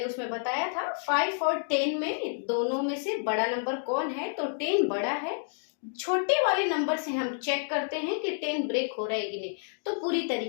उसमें बताया था। 5 और 10 में दोनों में से बड़ा नंबर कौन है, तो 10 बड़ा है। छोटे वाले नंबर से हम चेक करते हैं कि 10 ब्रेक हो रहा है कि नहीं, तो पूरी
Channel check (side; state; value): right; silent; digital silence